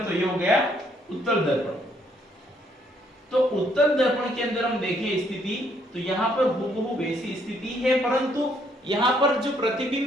तो ये हो गया उत्तल दर्पण। तो उत्तल दर्पण के अंदर हम देखें स्थिति, तो यहाँ पर हूबहू वैसी स्थिति है, परंतु यहाँ पर जो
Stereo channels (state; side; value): normal; both; correlation 0.69